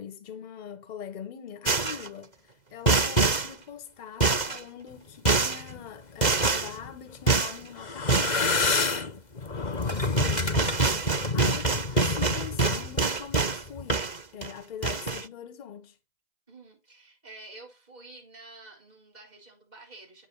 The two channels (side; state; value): right; late; 2.0 ms